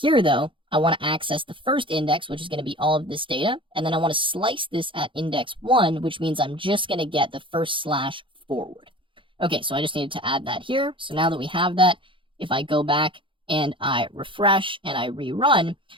though, I want to access the first index, which is going to be all of this data, and then I want to slice this at index 1, which means I'm just going to get the first slash forward. Okay, so I just needed to add that here. So now that we have that, if I go back and I refresh and I rerun,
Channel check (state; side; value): late; left; 0.25 ms